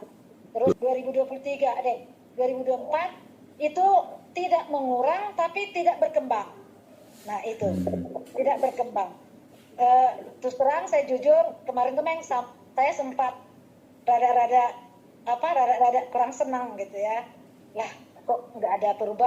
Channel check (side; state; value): both; identical; correlation 1.00